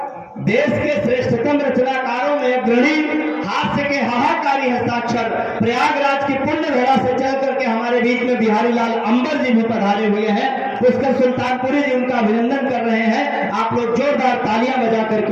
देश के श्रेष्ठतम रचनाकारों में अग्रणी, हास्य के हाहाकारी हस्ताक्षर, प्रयागराज की पुण्य धरा से चल करके हमारे बीच में बिहारी लाल अंबर जी भी पधारे हुए हैं। पुष्कर सुल्तानपुरी जी उनका अभिनंदन कर रहे हैं। आप लोग जोरदार तालियां बजा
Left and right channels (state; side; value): identical; both; correlation 1.00